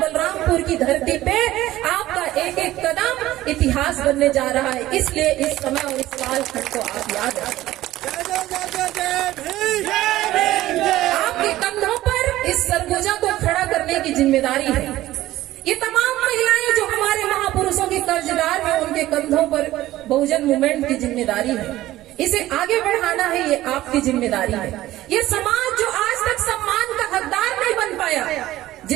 की धरती पे आपका एक एक कदम इतिहास बनने जा रहा है। इसलिए इस समय और इस कालखंड को आप याद रखें। आपके कंधों पर इस सरगुजा को खड़ा करने की जिम्मेदारी है। ये तमाम महिलाएं जो हमारे महापुरुषों की कर्जदार हैं, उनके कंधों पर बहुजन मूवमेंट की जिम्मेदारी है। इसे आगे बढ़ाना है, ये आपकी जिम्मेदारी है। ये समाज जो आज तक सम्मान का हकदार नहीं बन पाया,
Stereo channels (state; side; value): quieter; left; 15.4 dB